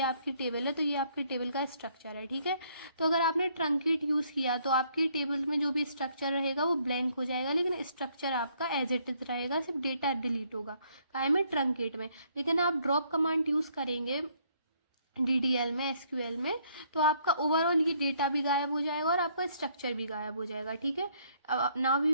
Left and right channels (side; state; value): both; inverted; correlation -0.67